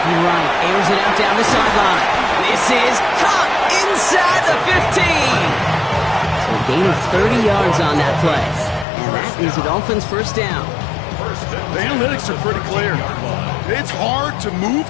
right. Airs it out down the sideline. This is caught inside the 15. So a gain of 30 yards on that play. And that is the Dolphins' first down. The analytics are pretty clear. It's hard to move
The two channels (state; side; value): drops out; right; at 8.8 s